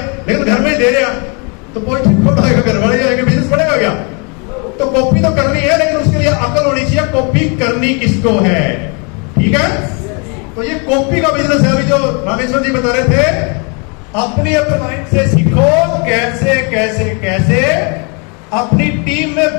लेकिन घर में ही दे रहा, तो कोई ठीक आएगा, घर वाले जाएंगे, बिजनेस बढ़ेगा क्या? तो कॉपी तो करनी है, लेकिन उसके लिए अकल होनी चाहिए, कॉपी करनी किसको है। ठीक है, तो ये कॉपी का बिजनेस है। अभी जो रामेश्वर जी बता रहे थे, अपनी अपलाइन से सीखो कैसे कैसे कैसे अपनी टीम में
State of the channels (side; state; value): right; quieter; 34.3 dB